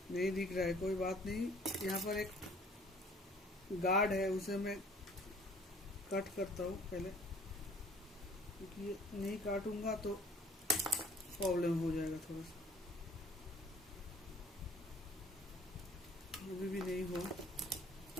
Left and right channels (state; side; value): normal; both; correlation 0.54